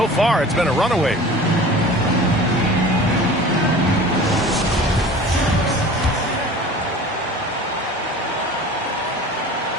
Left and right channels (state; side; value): normal; both; correlation 0.40